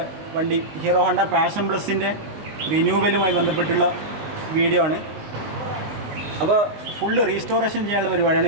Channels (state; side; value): late; left; 19 ms